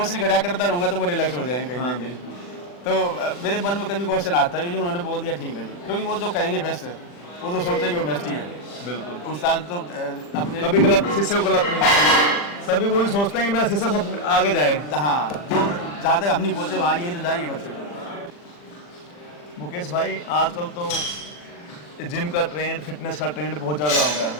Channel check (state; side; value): late; right; 40 ms